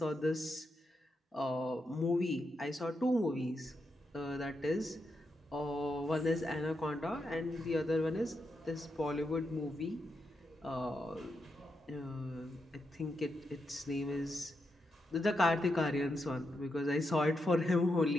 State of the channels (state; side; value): normal; both; correlation 0.84